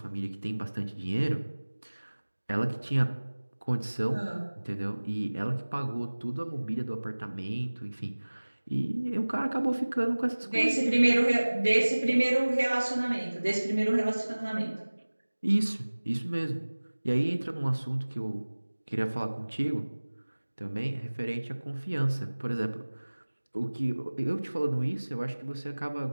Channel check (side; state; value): both; inverted; correlation -1.00